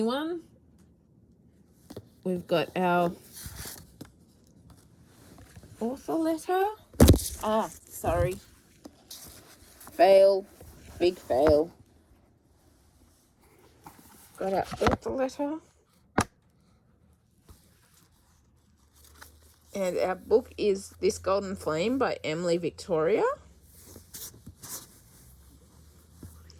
We've got our author letter. Sorry. Fail. Big fail. Got our author letter. And our book is This Golden Flame by Emily Victoria.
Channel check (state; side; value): identical; both; correlation 1.00